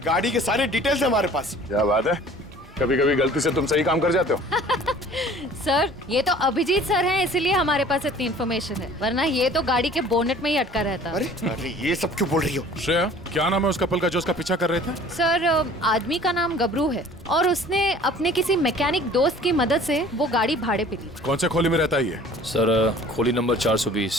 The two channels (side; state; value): both; normal; correlation 0.49